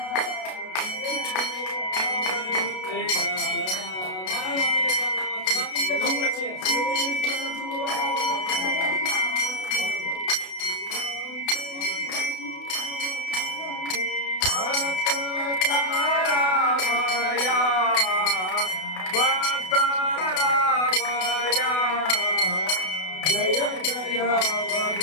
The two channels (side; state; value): right; late; 32 ms